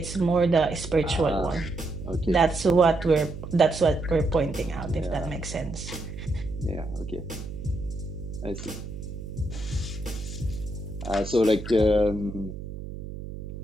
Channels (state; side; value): noise; right; hum, 9 dB below the sound